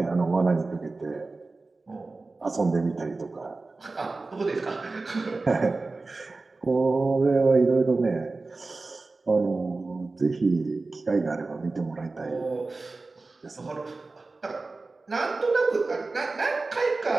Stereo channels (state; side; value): quieter; left; 3.5 dB